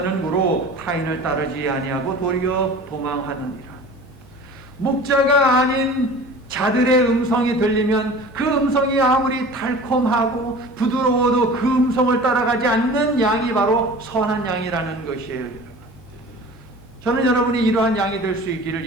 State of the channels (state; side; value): normal; both; correlation 0.40